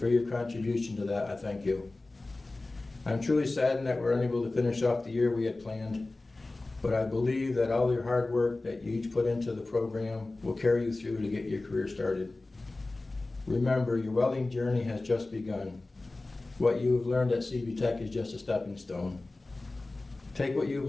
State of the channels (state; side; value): quieter; right; 3.1 dB